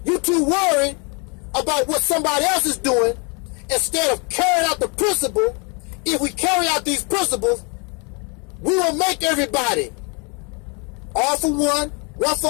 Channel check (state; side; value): quieter; right; 33.0 dB